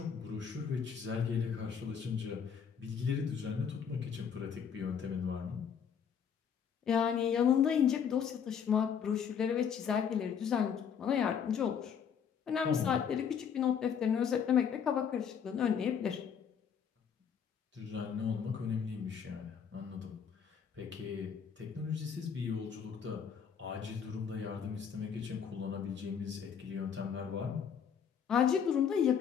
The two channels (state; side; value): quieter; right; 7.4 dB